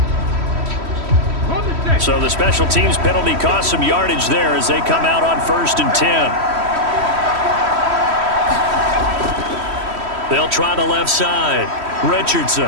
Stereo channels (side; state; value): left; late; 3.1 ms